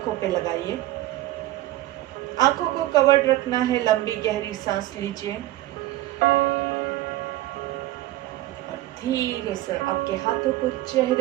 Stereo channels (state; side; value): quieter; left; 16.2 dB